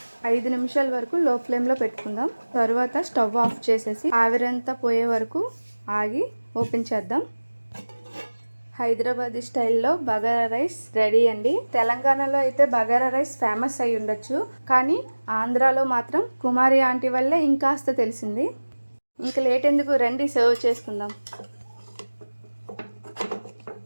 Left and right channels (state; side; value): inverted; both; correlation -1.00